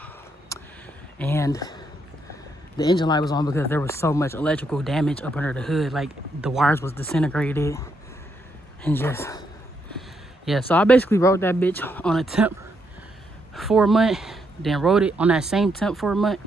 and the engine light was on because there was so much electrical damage up under the hood, like the wires was disintegrated, and just, yeah. So I basically rode that bitch on a temp for a month, then rode it on that same temp for a month,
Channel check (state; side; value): normal; both; correlation 0.78